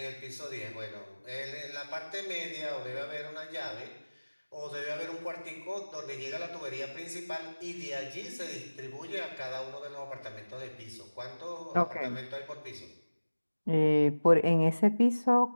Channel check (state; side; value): inverted; both; correlation -1.00